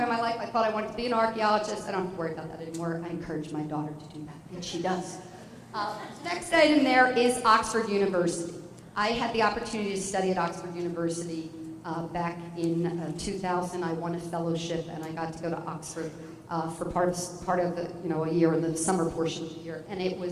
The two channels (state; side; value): identical; both; correlation 1.00